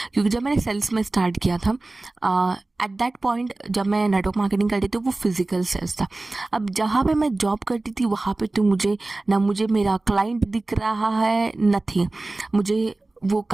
क्योंकि जब मैंने sales में start किया था, at that point जब मैं network marketing करती थी वो फिजिकल सेल्स था. अब जहाँ पे मैं जॉब करती थी वहाँ पे तो मुझे मेरा क्लाइंट दिख रहा है, नथिंग. मुझे वो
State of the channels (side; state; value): left; quieter; 3.0 dB